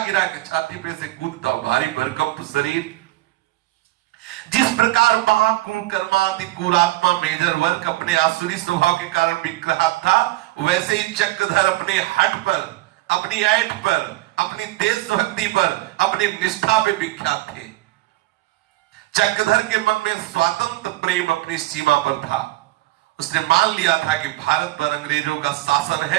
गिरा के छाती पे से कूदता, भारी भरकम शरीर। जिस प्रकार महाकुकर्माति कुरात्मा मेजर वर्क अपने आसुरी स्वभाव के कारण विग्रहात था, वैसे ही चक्रधर अपने हट पर, अपनी ऐठ पर, अपनी देशभक्ति पर, अपनी निष्ठा पे विख्यात थे। चक्रधर के मन में स्वातंत्र प्रेम अपनी सीमा पर था। उसने मान लिया था कि भारत पर अंग्रेजों का शासन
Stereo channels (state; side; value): quieter; left; 18.3 dB